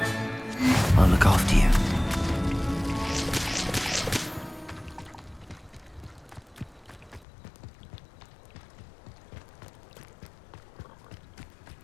I'll look after you.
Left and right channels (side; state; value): right; drops out; at 7.2 s